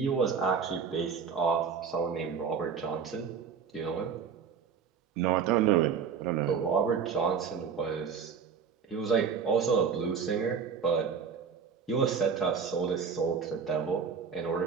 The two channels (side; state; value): left; quieter; 6.4 dB